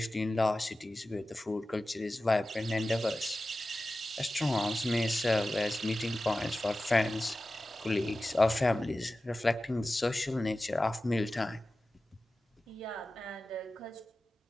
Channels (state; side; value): normal; both; correlation 0.95